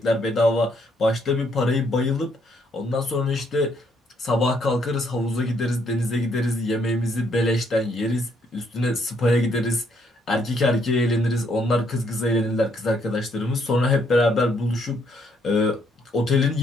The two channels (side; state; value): both; normal; correlation 0.71